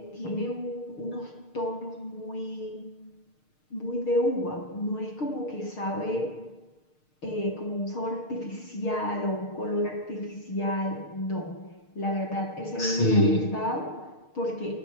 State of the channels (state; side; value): late; right; 6.5 ms